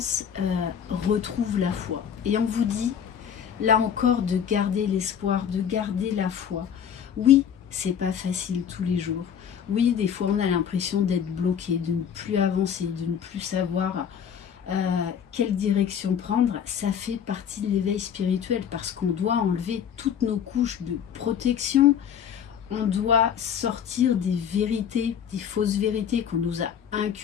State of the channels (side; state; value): right; quieter; 8.3 dB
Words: retrouvent la foi. Et on vous dit, là encore, de garder l'espoir, de garder la foi. Oui, c'est pas facile tous les jours. Oui, des fois, on a l'impression d'être bloqué, de ne plus avancer, de ne plus savoir quelle direction prendre. Ça fait partie de l'éveil spirituel parce qu'on doit enlever toutes nos couches de protection. On doit sortir des vérités, des fausses vérités qu'on nous a